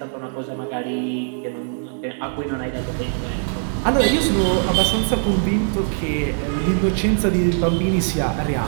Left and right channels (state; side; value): silent; left; digital silence